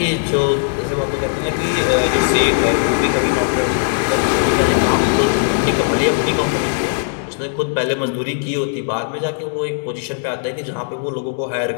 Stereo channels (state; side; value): silent; right; digital silence